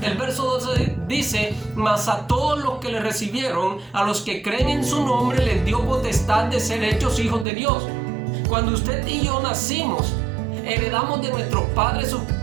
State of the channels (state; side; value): drops out; left; at 7.5 s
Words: El verso 12 dice: mas a todos los que le recibieron, a los que creen en su nombre, les dio potestad de ser hechos hijos de Dios. Cuando usted y yo nacimos, heredamos de nuestros padres sus